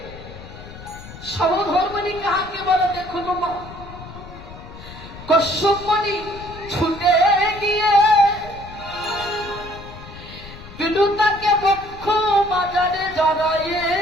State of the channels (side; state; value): left; noise; rumble, 15 dB below the sound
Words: সমধর্মণি কাকে বলে দেখুন মা। কশ্যপনি ছুটে গিয়ে বিনু তাকে বক্ষ বাজারে জড়াইয়ে